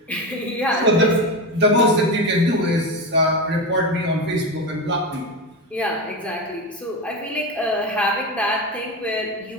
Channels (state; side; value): normal; both; correlation 0.20